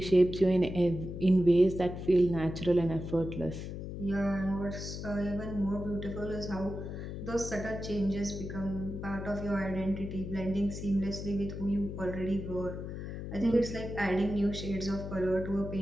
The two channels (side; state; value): left; noise; hum, 7 dB below the sound